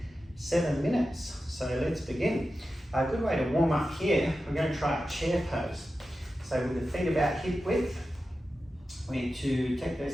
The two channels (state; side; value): normal; both; correlation 0.92